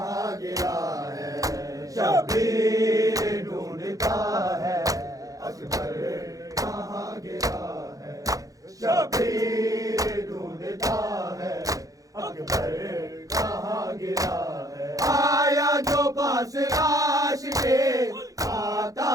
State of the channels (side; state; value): left; late; 0.17 ms